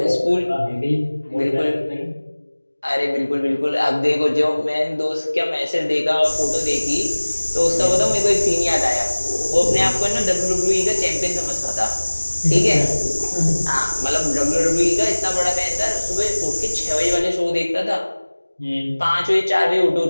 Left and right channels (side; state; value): both; inverted; correlation -1.00